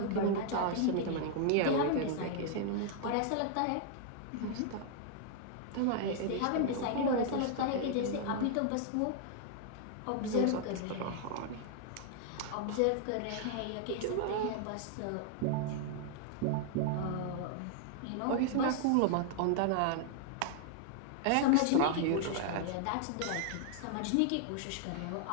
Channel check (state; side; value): different; both; correlation 0.00